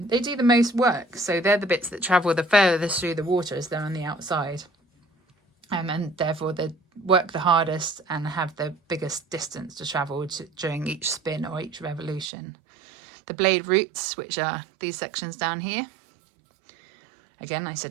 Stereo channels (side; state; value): left; drops out; at 12.3 s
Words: They do the most work, so they're the bits that travel the furthest through the water as they're on the outside, and therefore they work the hardest and have the biggest distance to travel during each spin or each revolution. The blade roots, which are these sections down here, again I